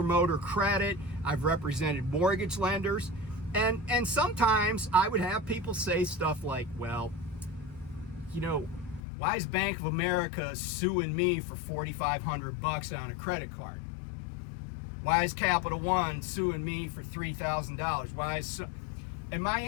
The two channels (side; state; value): right; drops out; at 9.0 s